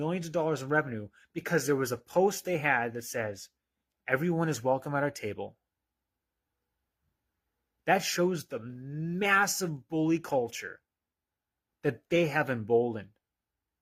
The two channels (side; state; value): both; identical; correlation 1.00